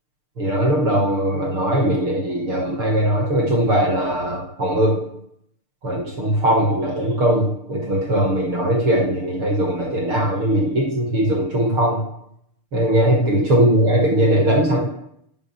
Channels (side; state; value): left; late; 6.7 ms